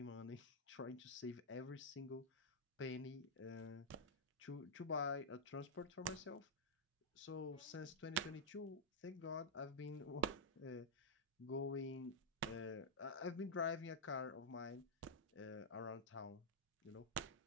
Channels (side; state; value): both; normal; correlation -0.07